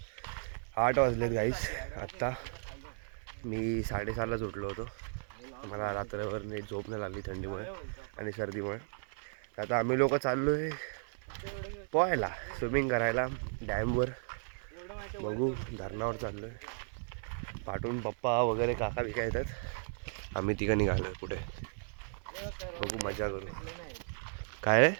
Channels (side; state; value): left; silent; 54 dB below the other